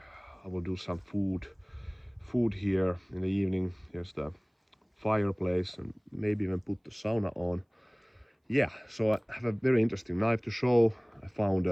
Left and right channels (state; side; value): identical; both; correlation 1.00